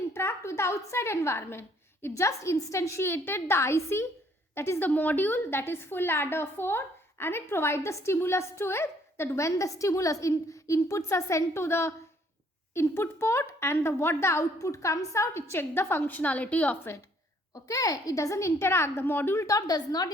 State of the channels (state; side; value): normal; both; correlation 0.64